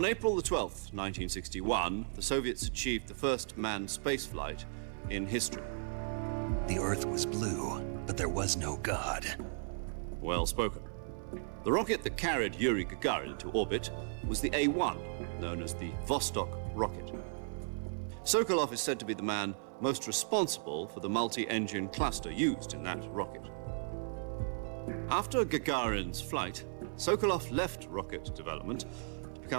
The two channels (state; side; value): silent; left; digital silence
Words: April the 12th, 1961, the Soviets achieved the first manned spaceflight in history. The Earth was blue, but there was no God. Well spoken. The rocket that carried Yuri Gagarin into orbit was the A-1, known as the Vostok rocket. Sokolov is said to be the man most responsible for the multi-engine cluster used in that rocket. After Gagarin's flight, Sokolov left rocket development to